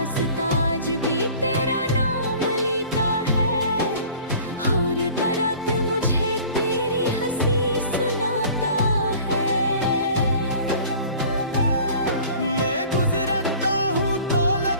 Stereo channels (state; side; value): inverted; both; correlation -0.46